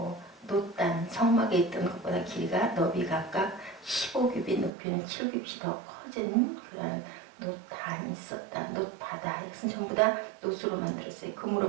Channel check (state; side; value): drops out; left; at 4.7 s